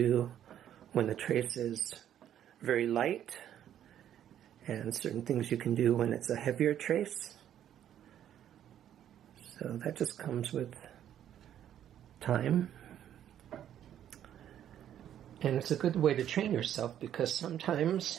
when the trace is very light, and certain things you can do when it's a heavier trace. So that just comes with time. And it's a good way to train yourself, because sometimes,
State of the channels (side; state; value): left; quieter; 10.6 dB